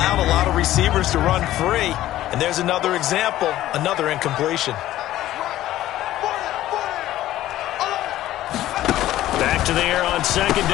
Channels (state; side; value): quieter; right; 14.2 dB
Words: a lot of receivers to run free. And there's another example, another incompletion. Back to the air on second